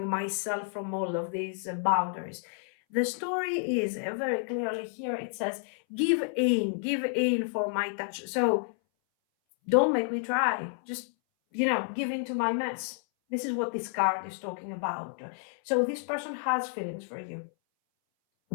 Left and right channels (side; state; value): right; silent; 58 dB below the other